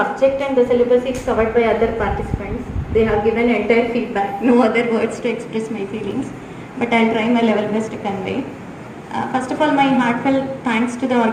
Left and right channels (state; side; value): identical; both; correlation 1.00